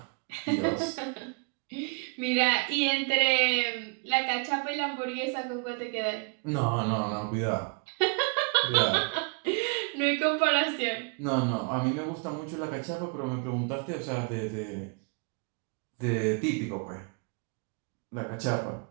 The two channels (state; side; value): quieter; left; 36.5 dB